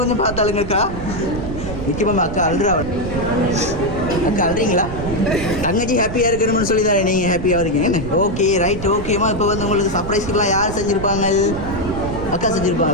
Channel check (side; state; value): right; noise; rumble, 8 dB below the sound